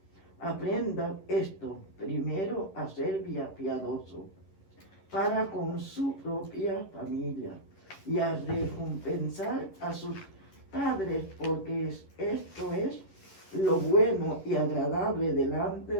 aprenda esto primero a ser piadoso para con su propia familia y a recompensar a sus padres, porque esto es lo bueno y agradable delante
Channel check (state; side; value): late; right; 11 ms